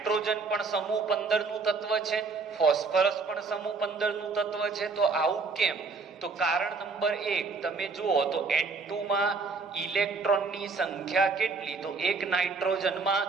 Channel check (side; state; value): left; quieter; 4.4 dB